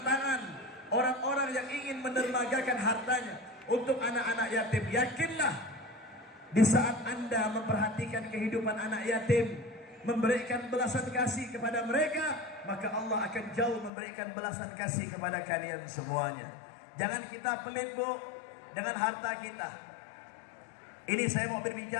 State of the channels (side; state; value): right; drops out; at 13.9 s